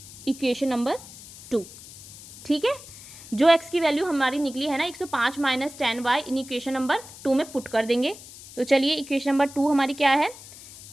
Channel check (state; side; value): noise; left; hiss, 17 dB below the sound